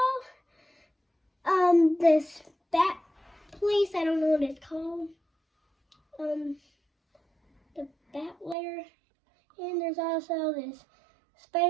this Bat place, I don't know what it's called. The Bat layer. And there's also this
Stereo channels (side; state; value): left; drops out; at 8.6 s